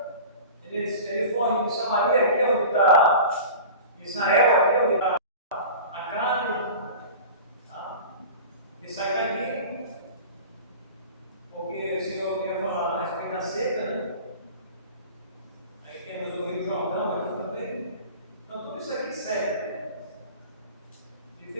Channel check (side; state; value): both; inverted; correlation -0.37